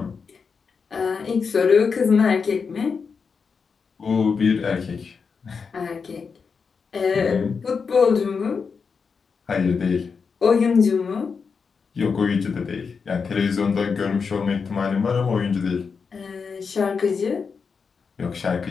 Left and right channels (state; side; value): quieter; right; 5.5 dB